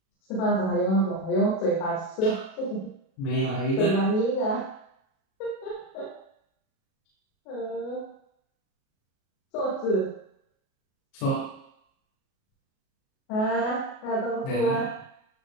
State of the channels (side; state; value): right; late; 37 ms